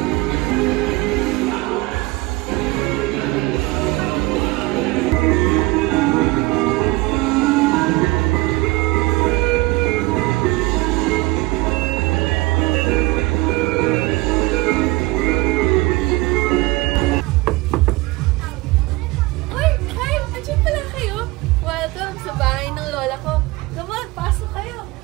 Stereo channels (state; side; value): quieter; left; 21.4 dB